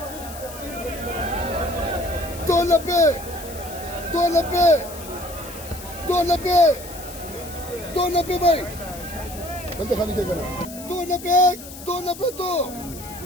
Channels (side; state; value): left; noise; hiss, 14 dB below the sound